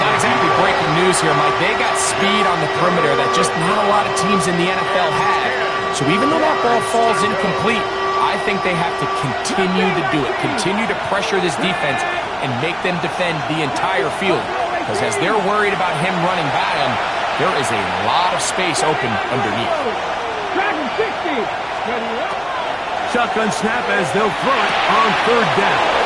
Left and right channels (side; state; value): both; identical; correlation 1.00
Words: exactly breaking news here, Mike. They got speed on the perimeter that just not a lot of teams in the NFL have. So even though that ball falls incomplete, I think they have to continue to do it. Continue to pressure this defense and make them defend the entire field. Because as they're worried about him running by them, there is a lot of space open underneath. Dragon 60. Ready, Shotgun snap as they'll throw it on third down.